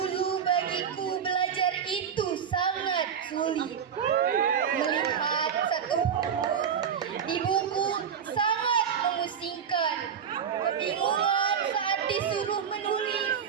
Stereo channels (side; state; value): left; quieter; 7.6 dB